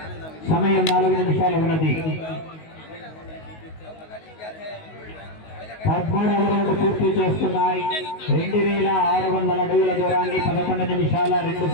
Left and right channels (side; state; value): right; late; 19 ms